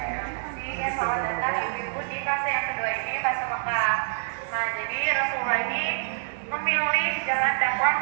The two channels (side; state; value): left; silent; digital silence